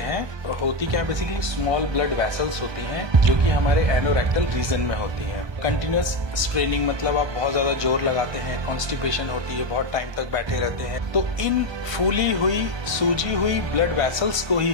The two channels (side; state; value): left; late; 1.2 ms